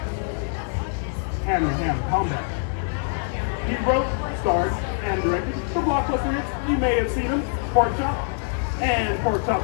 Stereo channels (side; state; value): right; silent; 62 dB below the other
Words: hand-to-hand combat. He wrote, starred, and directed the blockbuster hits. You may have seen him, Pork Chop and Pork Chop